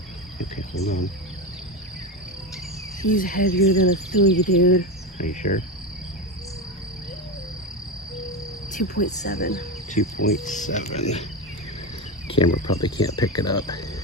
Okay, hold on. He's heavier than a 3, dude. Are you sure? 2.7. 2.7. Camera probably can't pick it up.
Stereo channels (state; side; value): normal; both; correlation 0.17